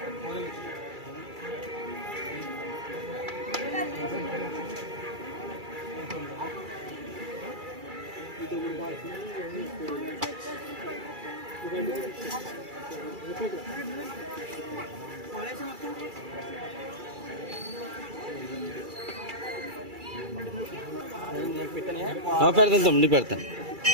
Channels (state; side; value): late; left; 2.3 ms